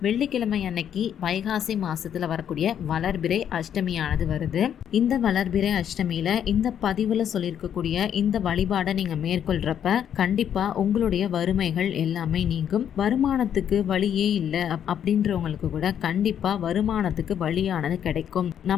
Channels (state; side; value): quieter; right; 9.2 dB